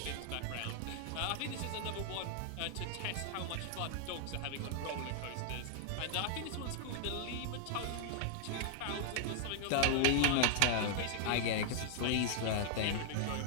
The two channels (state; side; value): different; both; correlation -0.01